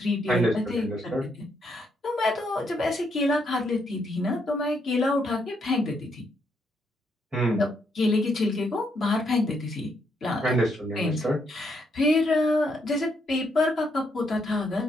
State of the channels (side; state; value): both; normal; correlation 0.75